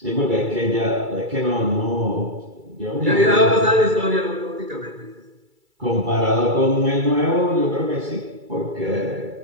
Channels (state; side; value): late; left; 2.3 ms